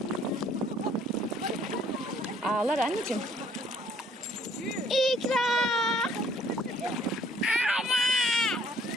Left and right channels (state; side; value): normal; both; correlation 0.62